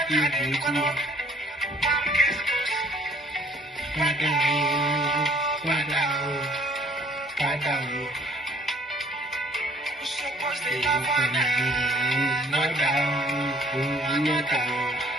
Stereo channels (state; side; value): normal; both; correlation 0.58